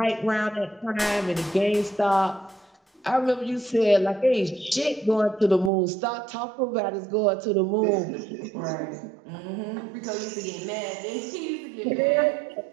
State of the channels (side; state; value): left; drops out; at 5.7 s